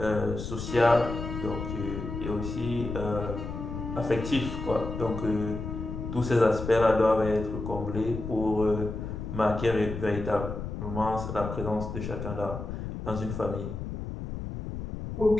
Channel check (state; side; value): noise; left; rumble, 6 dB below the sound